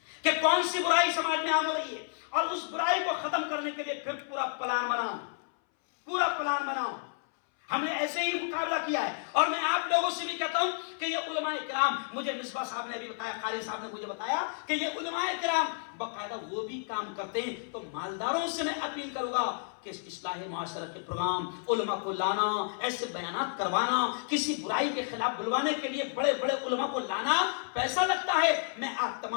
کہ کون سی برائی سماج میں عام ہو رہی ہے، اور اس برائی کو ختم کرنے کے لیے پھر پورا پلان بناؤ، پورا پلان بناؤ۔ ہم نے ایسے ہی مقابلہ کیا ہے، اور میں آپ لوگوں سے بھی کہتا ہوں کہ یہ علماء کرام، مجھے مصباح صاحب نے بھی بتایا، قاری صاحب نے مجھے بتایا کہ یہ علماء کرام باقاعدہ وہ بھی کام کرتے ہیں، تو مالداروں سے میں اپیل کروں گا کہ اس اصلاح معاشرہ کے پروگرام، علماء کو لانا، ایسے بیانات کروانا، کسی برائی کے خلاف بلوانے کے لیے بڑے بڑے علماء کو لانا پیسہ لگتا ہے، میں آپ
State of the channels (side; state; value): right; silent; 57 dB below the other